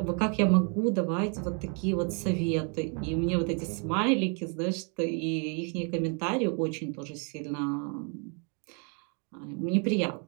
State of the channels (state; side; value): quieter; left; 38.5 dB